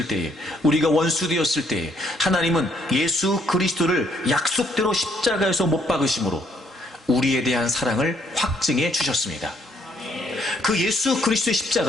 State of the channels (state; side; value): normal; both; correlation 0.68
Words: 때에, 우리가 원수 되었을 때에 하나님은 예수 그리스도를 약속대로 십자가에서 못 박으심으로 우리에 대한 사랑을 확증해 주셨습니다. 그 예수 그리스도의